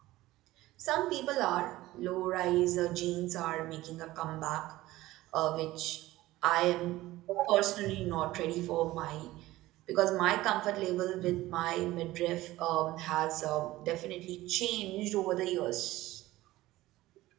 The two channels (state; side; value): quieter; left; 17.1 dB